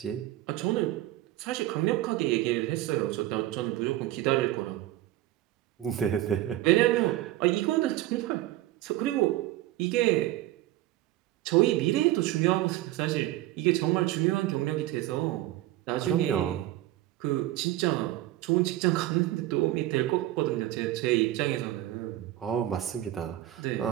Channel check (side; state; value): left; quieter; 15.1 dB